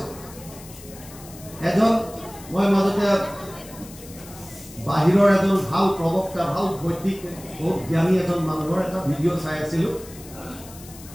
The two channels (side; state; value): left; noise; hiss, 18 dB below the sound